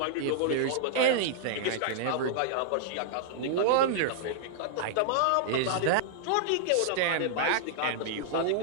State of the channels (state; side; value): different; both; correlation -0.01